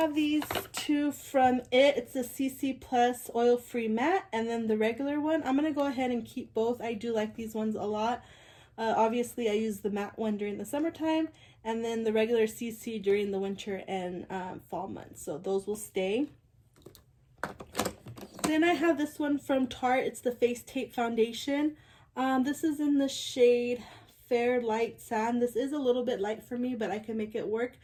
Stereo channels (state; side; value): identical; both; correlation 1.00